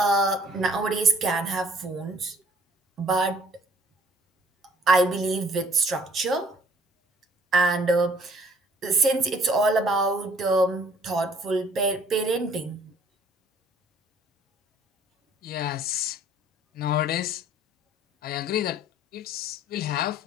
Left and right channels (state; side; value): normal; both; correlation 0.57